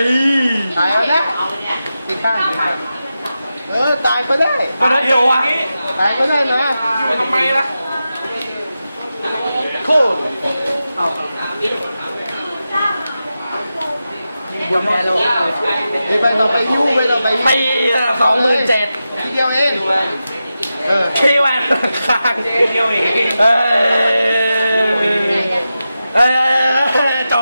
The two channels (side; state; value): both; inverted; correlation -0.91